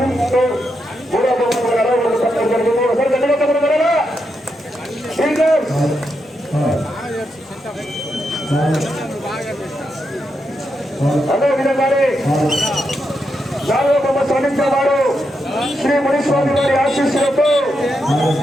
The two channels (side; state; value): both; normal; correlation 0.84